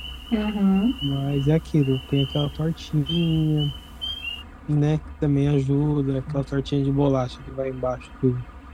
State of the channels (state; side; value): identical; both; correlation 1.00